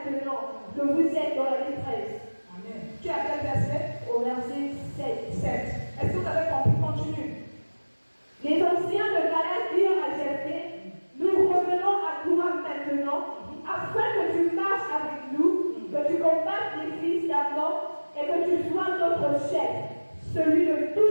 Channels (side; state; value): both; inverted; correlation -1.00